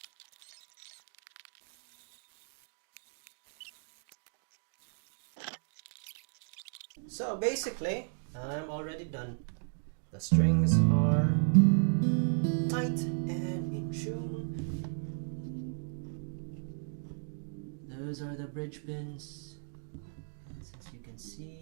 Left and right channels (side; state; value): left; silent; digital silence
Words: So basically, I'm already done. The strings are tight and in tune. Those are the bridge pins. As you can